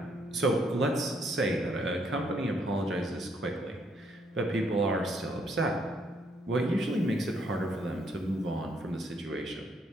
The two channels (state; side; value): normal; both; correlation 0.71